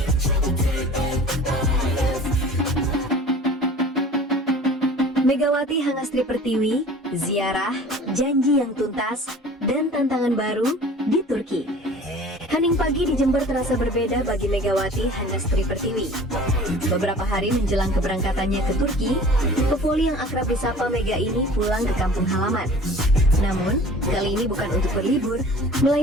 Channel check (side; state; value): both; normal; correlation 0.45